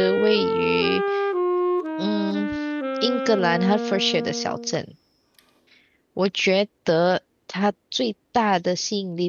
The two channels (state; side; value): identical; both; correlation 1.00